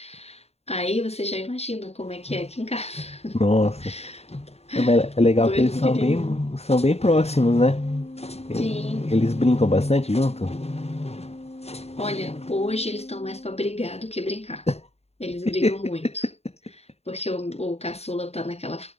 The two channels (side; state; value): right; late; 0.30 ms